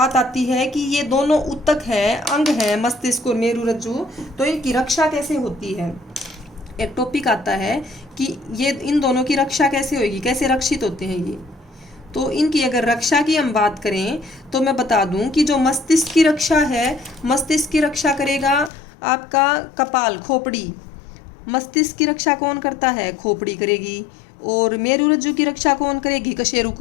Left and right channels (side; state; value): right; drops out; at 18.7 s